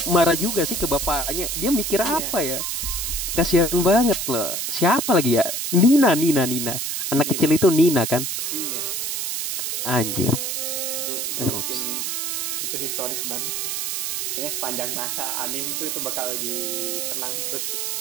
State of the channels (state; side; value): noise; right; hiss, 2 dB below the sound